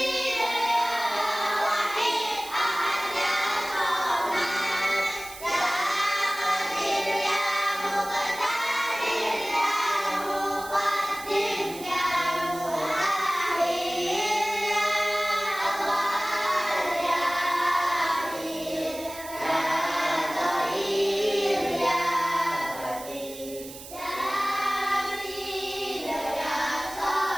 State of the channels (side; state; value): right; noise; hiss, 14 dB below the sound